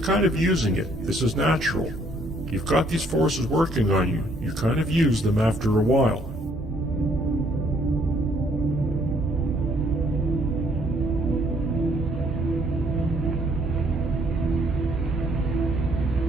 of using it. This is natural. You've got these forces working on you. You kind of use them after a while.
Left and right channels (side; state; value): both; normal; correlation 0.65